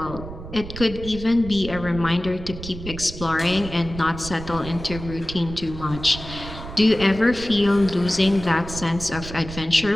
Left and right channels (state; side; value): noise; right; rumble, 11 dB below the sound